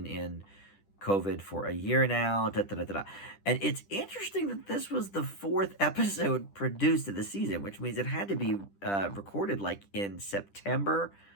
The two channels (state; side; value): late; right; 10 ms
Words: in COVID for a year now. Da, da, da, da, da. And it's interesting that this was the 4th episode produced of the season, which means it had to be recorded like in September,